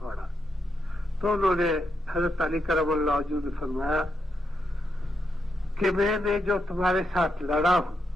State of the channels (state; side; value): normal; both; correlation 0.82